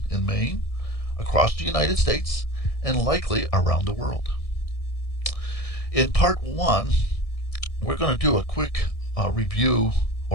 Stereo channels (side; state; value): right; late; 1.6 ms